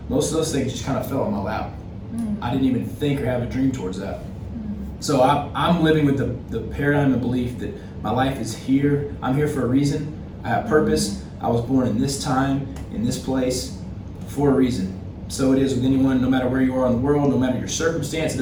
Most of those things just kind of fell in my lap. I didn't even think or have a dream towards that. So I'm living with the paradigm of belief that my life is here. I'm here for a reason. I have purpose. I was born in this time, in this place, for a reason. So it is with anyone, no matter where you are in the world, no matter your circumstance. It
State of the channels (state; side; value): identical; both; correlation 1.00